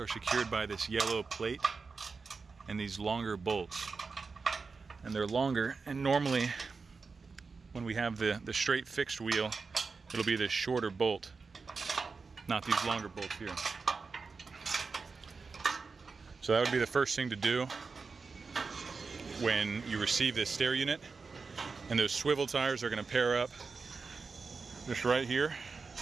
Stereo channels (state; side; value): quieter; left; 4.6 dB